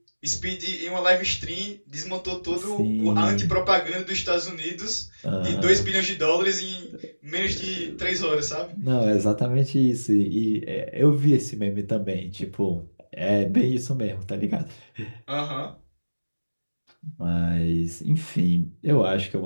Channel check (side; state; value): both; inverted; correlation -1.00